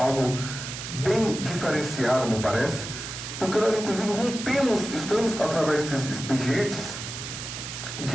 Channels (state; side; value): noise; right; hiss, 8 dB below the sound